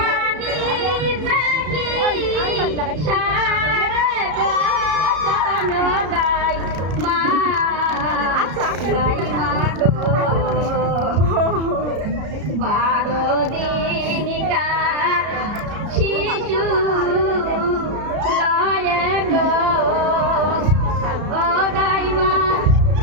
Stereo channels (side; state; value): left; late; 33 ms